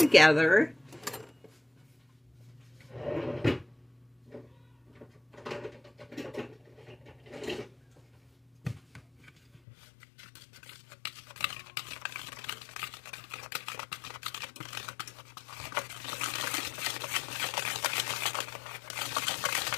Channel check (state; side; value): drops out; right; at 9.6 s